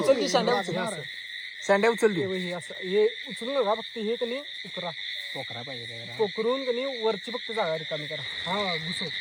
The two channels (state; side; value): identical; both; correlation 1.00